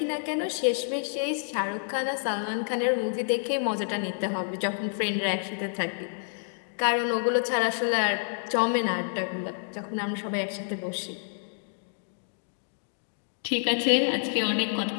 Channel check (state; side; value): silent; right; digital silence